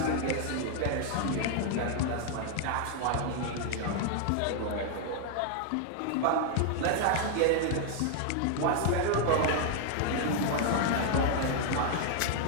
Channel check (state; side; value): different; both; correlation 0.00